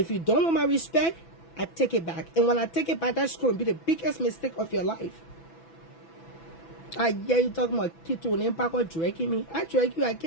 you don't want my respect, I take it back. And when I take it back, that's going to be the biggest mistake of your life. Yeah, you talking about Tito and Impact or dragging me. I drag you, I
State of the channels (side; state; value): right; late; 6.0 ms